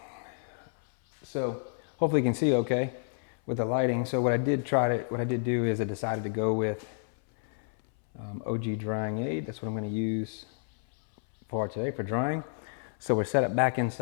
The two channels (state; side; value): silent; right; 58 dB below the other